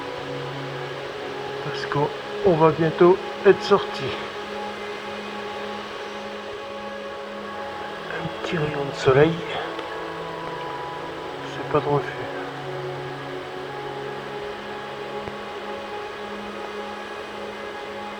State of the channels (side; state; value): both; identical; correlation 1.00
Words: parce qu'on va bientôt être sorti. Un petit rayon de soleil, c'est pas de refus.